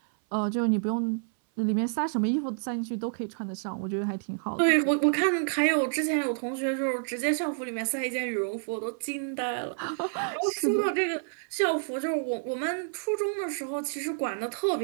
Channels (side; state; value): left; silent; 59 dB below the other